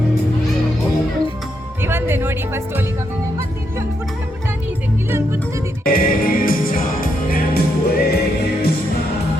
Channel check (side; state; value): both; normal; correlation 0.80